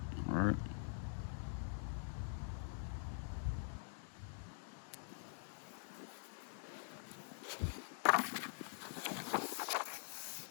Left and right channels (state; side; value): silent; right; digital silence